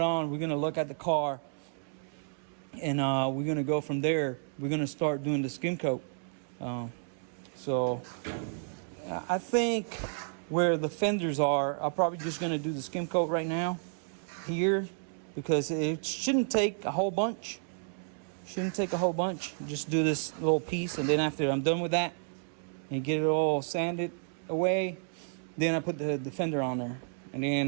we're gonna look at the car, and we're gonna go from there. We're gonna start doing the skim coat. So I think where the fenders are, I'm probably just gonna do the skim coat right now here, because it shouldn't take a whole bunch. Just do this little piece, and then after I'm done with that and get it all sanded away, then I put the fender on there, and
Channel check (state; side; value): silent; left; digital silence